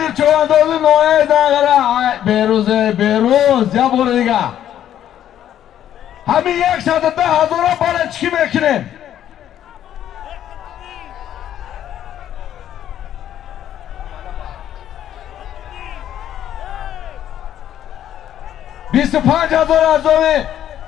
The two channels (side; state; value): right; quieter; 10.9 dB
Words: چواندازی نوعه دنگره بیروز یا بور دیگه همین 110,000 بالا چی میکنیم 25,000 از دومی